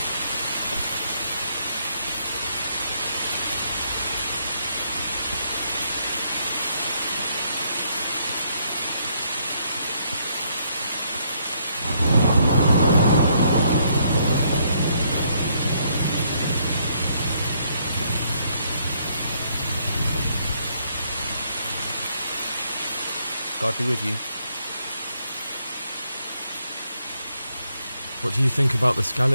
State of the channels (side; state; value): both; inverted; correlation -0.72